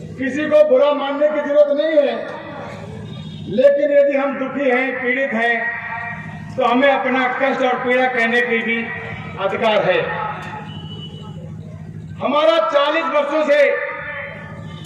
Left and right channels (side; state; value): both; identical; correlation 1.00